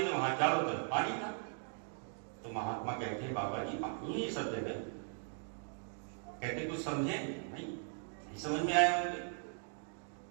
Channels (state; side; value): silent; left; 52 dB below the other